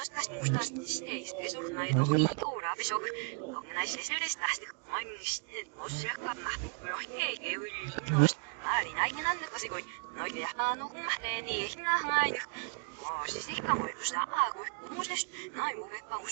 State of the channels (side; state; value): left; quieter; 38.6 dB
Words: 다시 못 살아시네 스페셜 나이 너무 이거라 비쇼 거기나 실실레스 다시 많이 미시는 뭐 시작한 막 그렇게 개울이 아니 나이는 안 듣고 시고 너희 약간 녹음 마테니 힘나 하나이 시시가 뭐 무슨 아고 무슨 나이 뭐 백방